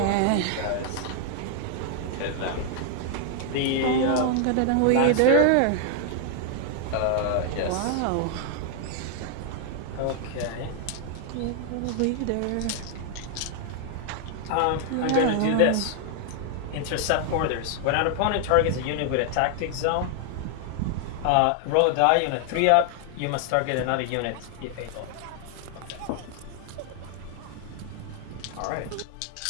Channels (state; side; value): different; both; correlation 0.00